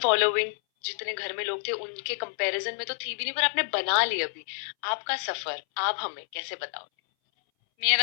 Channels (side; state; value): right; silent; 59 dB below the other